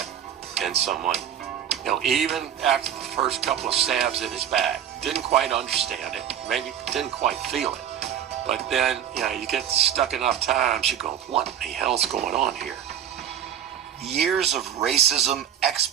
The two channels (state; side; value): quieter; left; 9.5 dB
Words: in someone. You know, even after the first couple of stabs in his back, didn't quite understand it, maybe didn't quite feel it. But then, you know, you get stuck enough times, you go, what the hell's going on here? Years of racism,